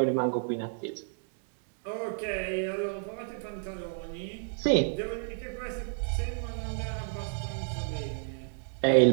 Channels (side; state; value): left; silent; digital silence